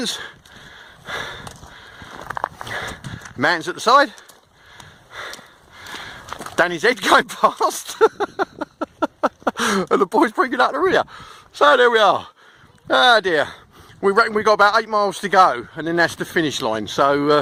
Mountains at the side. Danny's head going past. And the boys bringing up the rear. So there we are. Ah dear. We reckon we've got about 8 miles to go, and then that's the finish line.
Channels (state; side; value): identical; both; correlation 1.00